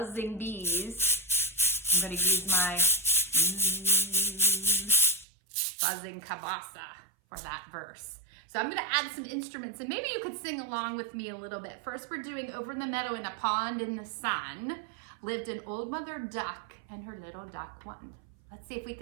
bees. I'm going to use my buzzing kabasa for that verse. So I'm going to add some instruments, and maybe you could sing along with me a little bit. First, we're doing over in the meadow in a pond in the sun lived an old mother duck and her little duck one. Let's see if we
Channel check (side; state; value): left; drops out; at 5.2 s